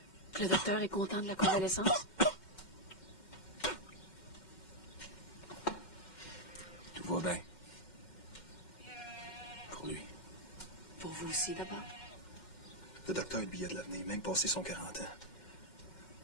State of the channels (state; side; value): late; right; 2.1 ms